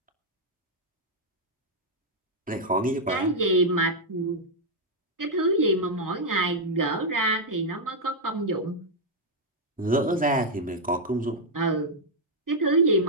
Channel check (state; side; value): normal; both; correlation -0.02